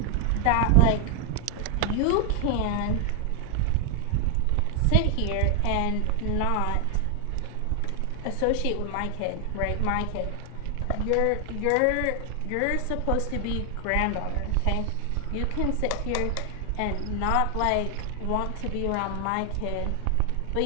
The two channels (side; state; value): both; different; correlation 0.00